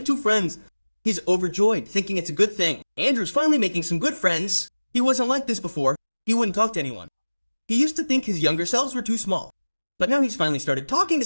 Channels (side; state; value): both; inverted; correlation -1.00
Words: two friends. He's overjoyed, thinking it's a good thing. Andrew's finally making some good friends. He wasn't like this before. He wouldn't talk to anyone. He used to think his younger selves were too small. But now he's finally started talking to